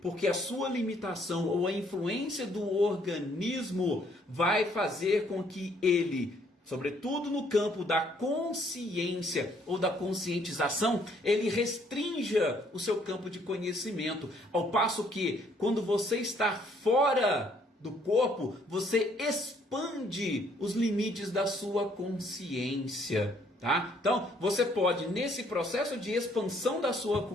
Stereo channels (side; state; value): both; normal; correlation 0.65